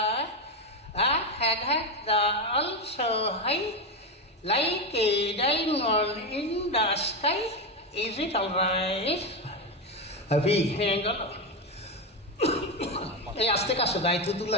I had the also high, like a diamond in the sky. Is it alright? Happy, hang on. এই আস্তে কাছে গাইতে তো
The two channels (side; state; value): both; normal; correlation 0.12